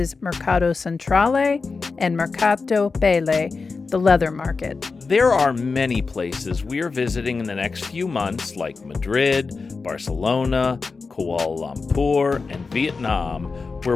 Mercato Centrale and Mercato Pelle, the leather market. There are many places we are visiting in the next few months, like Madrid, Barcelona, Kuala Lumpur, and Vietnam,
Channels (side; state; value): right; quieter; 4.4 dB